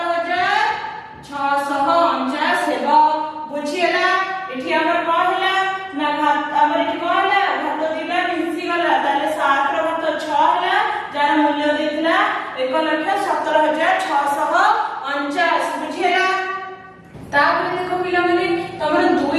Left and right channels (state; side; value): identical; both; correlation 1.00